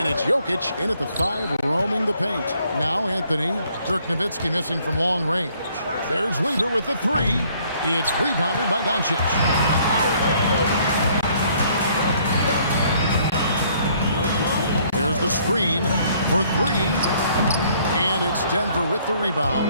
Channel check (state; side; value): inverted; both; correlation -0.63